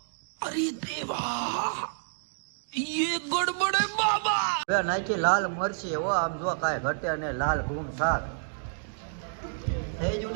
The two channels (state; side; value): silent; left; digital silence